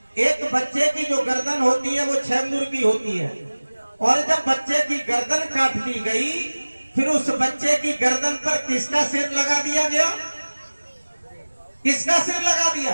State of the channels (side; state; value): both; inverted; correlation -1.00